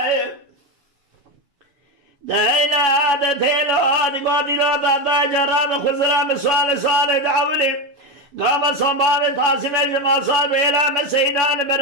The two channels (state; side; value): late; left; 7.1 ms